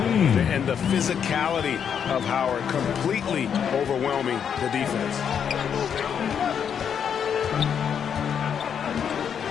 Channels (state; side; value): quieter; right; 7.8 dB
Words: And the physicality of Howard completely overwhelming the defense.